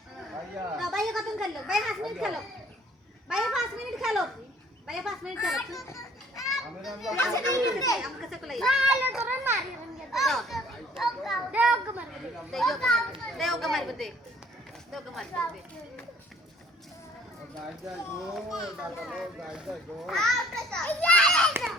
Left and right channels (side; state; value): both; normal; correlation 0.56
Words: দাও ভাইয়ের কতক্ষণ খেললো ভাই 5 মিনিট খেলো ভাইয়ের 5 মিনিট খেলো ভাইয়ের 5 মিনিট খেলো আমার কাছে কলাই না তোরা মারি দেও গমার দে গায় যায় গো দাদা গায় যায় গো